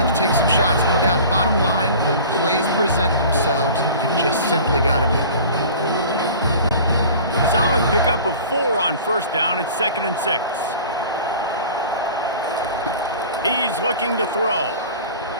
have to take some shots, no doubt. Bottom line, when plays present themselves, you just simply got to make them. Solid pickup of 4 on first down. It's 2nd and 6. He's looking to throw.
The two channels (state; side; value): inverted; both; correlation -0.42